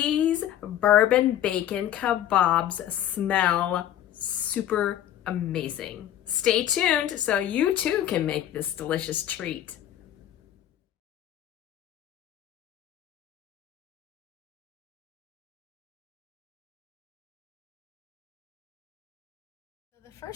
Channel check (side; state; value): right; quieter; 11.4 dB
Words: bourbon bacon kebabs smell super amazing. Stay tuned so you too can make this delicious treat. So the